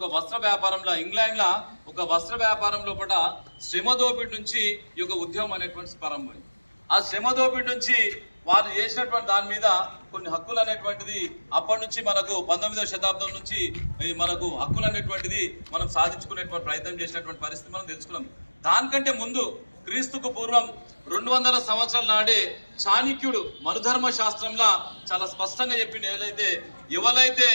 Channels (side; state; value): both; inverted; correlation -1.00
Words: వస్త్ర వ్యాపారంలో ఇంగ్లాండ్లో ఒక వస్త్ర వ్యాపారం లోపల శ్రమ దోపిడీ నుంచి ఈ యొక్క ఉద్యమం అనేటువంటి ప్రారంభమైంది. ఆ శ్రమ దోపిడీ నుంచి వాళ్ళు చేసినటువంటి దాని మీద కొన్ని హక్కులు అనేటువంటిది అప్పటి నుంచి మనకు 19వ శతాబ్దం నుంచి మనకు హక్కులు అనేటువంటిది మనం సాధించుకునేటువంటి ప్రయత్నం చేసినటువంటి పరిస్థితి మనం తెలుసుకున్నాం. దానికంటే ముందు క్రీస్తుకు పూర్వం 200 సంవత్సరాల నాడే చాణక్యుడు మనుధర్మ శాస్త్రంలో చాలా స్పష్టంగా చెప్పింది. ఎవరైతే